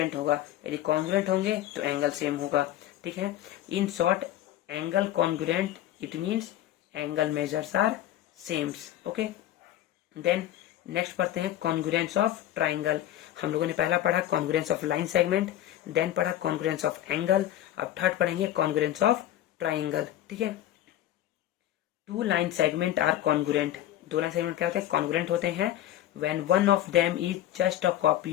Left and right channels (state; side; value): quieter; right; 12.8 dB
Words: होगा, यदि कॉन्ग्रुएंट होंगे तो एंगल सेम होगा, ठीक है। In short angle congruent it means angle measures are sames, okay. Then next पढ़ते हैं कॉन्ग्रुएंस ऑफ ट्राइंगल। हम लोगों ने पहला पढ़ा congruence of line segment, then पढ़ा कॉन्ग्रुएंस ऑफ एंगल, अब थर्ड पढ़ेंगे कॉन्ग्रुएंस ऑफ ट्राइंगल, ठीक है। Two line segment are congruent, दो लाइन सेगमेंट क्या होते हैं, कॉन्ग्रुएंट होते हैं when one of them is just a